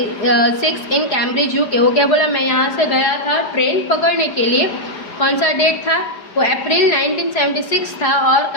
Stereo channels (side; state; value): right; late; 4.9 ms